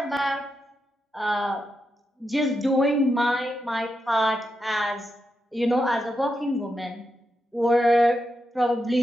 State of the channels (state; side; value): normal; both; correlation 0.86